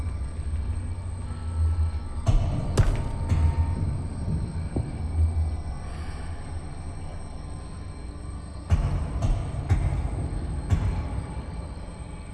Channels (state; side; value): identical; both; correlation 1.00